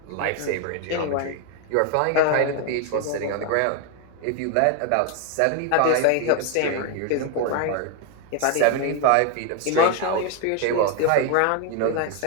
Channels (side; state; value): both; different; correlation 0.01